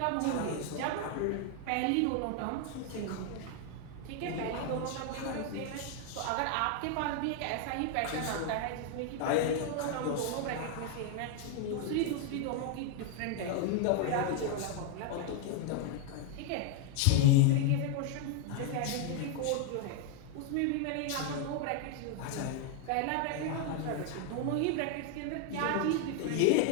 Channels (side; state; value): both; different; correlation 0.00